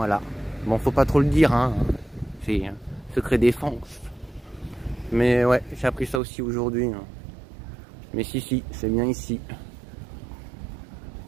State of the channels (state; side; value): drops out; left; at 6.2 s